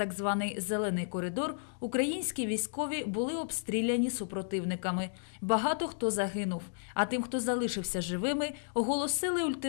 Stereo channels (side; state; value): right; silent; digital silence